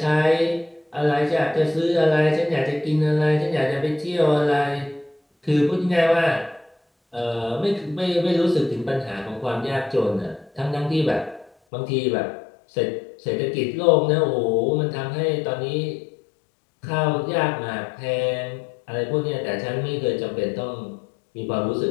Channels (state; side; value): drops out; right; at 11.5 s